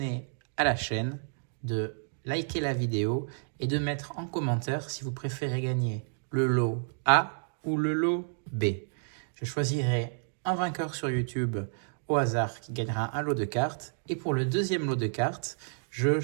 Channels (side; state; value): left; silent; digital silence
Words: à la chaîne, de liker la vidéo et de mettre en commentaire si vous préférez gagner le lot A ou le lot B. Je choisirai un vainqueur sur YouTube au hasard qui gagnera un lot de cartes. Et pour le deuxième lot de cartes, je